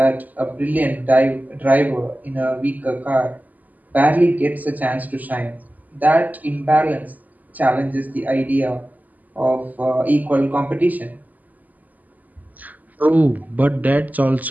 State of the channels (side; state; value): left; late; 0.080 ms